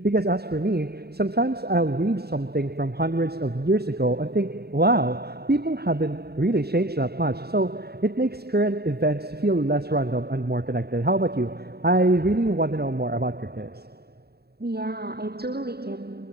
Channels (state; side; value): late; left; 0.46 ms